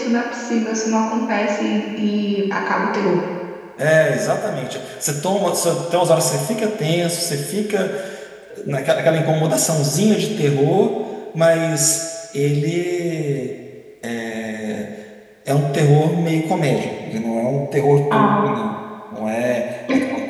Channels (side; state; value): both; identical; correlation 1.00